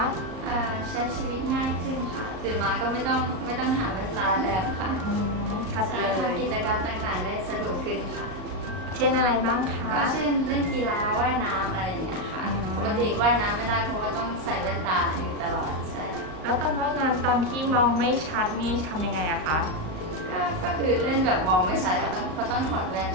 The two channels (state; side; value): late; left; 38 ms